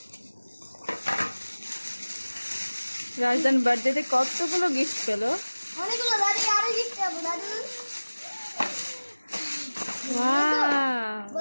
রাজদান বার্থডেতে কতগুলো গিফট পেলো? অনেকগুলো। দাদি আরো গিফট পাবো দাদু। ওয়াও,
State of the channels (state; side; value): inverted; both; correlation -1.00